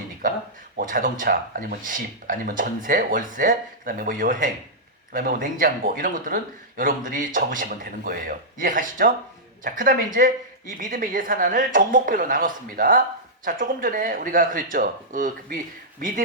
뭐 자동차, 아니면 집, 아니면 전세, 월세, 그 다음에 뭐 여행, 그 다음에 뭐 냉장고, 이런 것들은 여러분들이 적으시면 되는 거예요. 이해 가시죠? 자, 그 다음에 이제 이 믿음의 예산안을 종목별로 나눴습니다. 자, 조금 전에 우리가 그랬죠.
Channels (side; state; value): both; normal; correlation -0.11